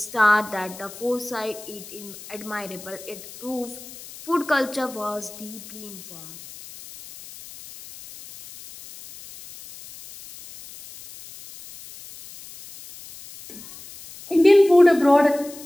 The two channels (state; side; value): noise; left; hiss, 17 dB below the sound